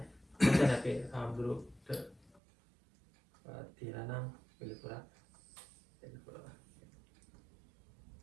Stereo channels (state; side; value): drops out; left; at 2.4 s